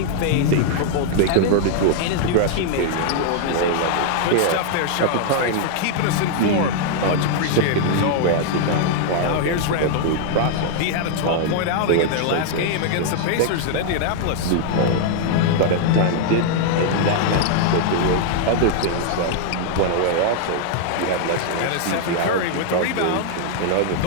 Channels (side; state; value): both; different; correlation 0.00